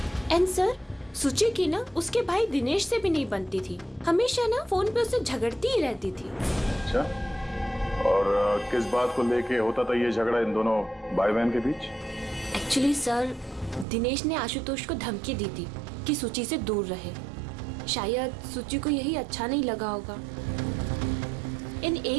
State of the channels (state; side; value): drops out; left; at 13.9 s